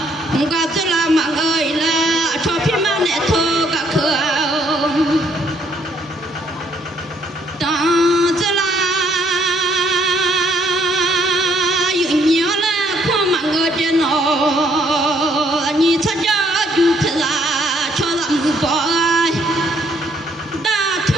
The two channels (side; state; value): both; normal; correlation 0.68